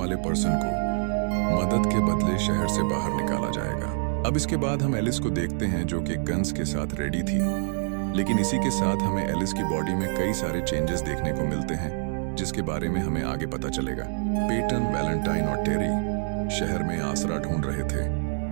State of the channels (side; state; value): left; silent; 61 dB below the other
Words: पर्सन को मदद के बदले शहर से बाहर निकाला जाएगा। अब इसके बाद हम एलिस को देखते हैं, जो कि गन्स के साथ रेडी थी, लेकिन इसी के साथ हमें एलिस की बॉडी में कई सारे चेंजेस देखने को मिलते हैं, जिसके बारे में हमें आगे पता चलेगा। पेटन, वैलेंटाइन और टेरी शहर में आसरा ढूंढ रहे थे,